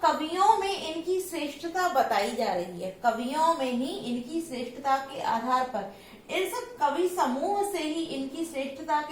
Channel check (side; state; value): both; identical; correlation 1.00